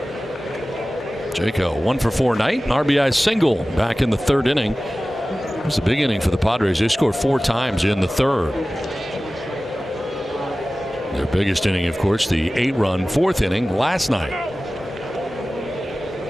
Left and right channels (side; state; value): both; normal; correlation 0.96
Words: Jake, a 1-for-4 night, an RBI single back in the 3rd inning. It was a big inning for the Padres. They scored 4 times in the 3rd. Their biggest inning, of course, the 8-run 4th inning last night.